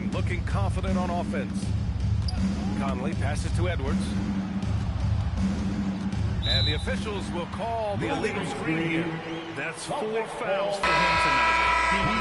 looking confident on offense. Conley passes to Edwards. And the officials will call the illegal screen here. That's 4 fouls for him tonight. He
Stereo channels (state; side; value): identical; both; correlation 1.00